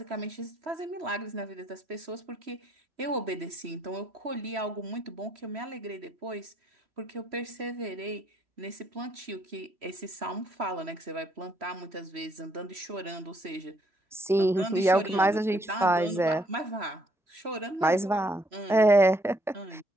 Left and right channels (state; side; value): normal; both; correlation 0.69